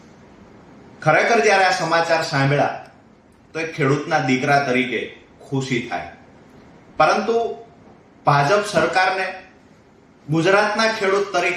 ખરેખર જ્યારે આ સમાચાર સાંભળ્યા તો એક ખેડૂતના દીકરા તરીકે ખુશી થાય. પરંતુ ભાજપ સરકારને ગુજરાતના ખેડૂત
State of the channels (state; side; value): identical; both; correlation 1.00